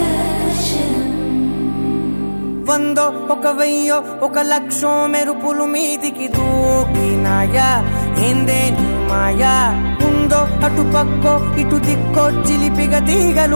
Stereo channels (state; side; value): inverted; both; correlation -1.00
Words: వందో ఒక వెయ్యో ఒక లక్షో మెరుపులు మీదికి దూకినాయా, ఏందే నీ మాయా? ఉందో అటు పక్కో ఇటు దిక్కో చిలిపిగ